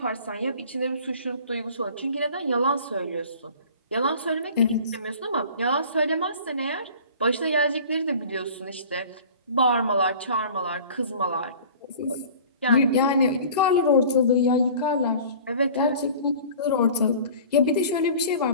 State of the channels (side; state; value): both; inverted; correlation -0.44